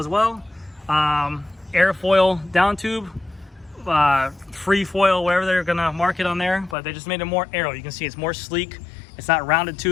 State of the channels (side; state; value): right; drops out; at 6.8 s